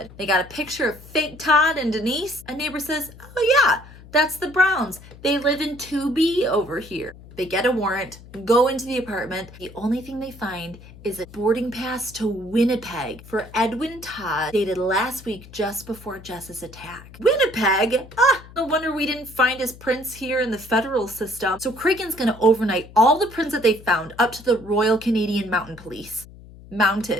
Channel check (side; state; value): left; noise; hum, 19 dB below the sound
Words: They got a picture of fake Todd and Denise. A neighbor says, oh yeah, that's the Browns. They live in 2B over here. They get a warrant, go into the apartment. The only thing they find is a boarding pass to Winnipeg for Edwin Todd, dated last week just before Jess's attack. Winnipeg? No wonder we didn't find his prints here in the federal system. So Cragen's gonna overnight all the prints that they found up to the Royal Canadian Mounted Police.